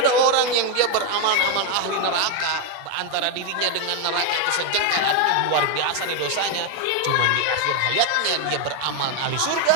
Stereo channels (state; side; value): different; both; correlation 0.01